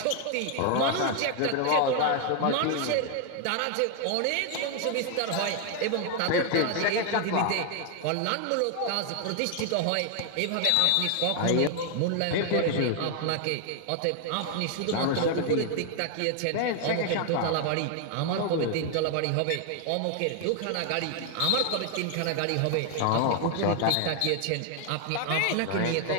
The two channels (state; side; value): different; both; correlation 0.00